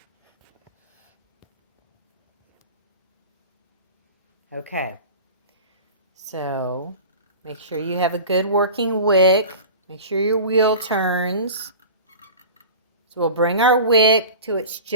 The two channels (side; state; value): both; inverted; correlation -0.35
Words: Okay, so make sure you have a good working wick. Make sure your wheel turns. So we'll bring our wick to it's